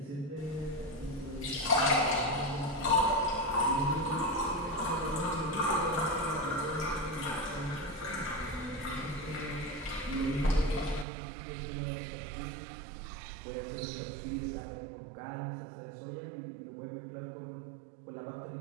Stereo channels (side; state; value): left; drops out; at 11.1 s